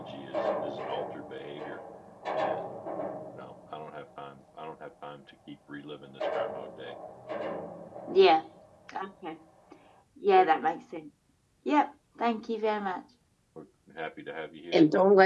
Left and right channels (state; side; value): identical; both; correlation 1.00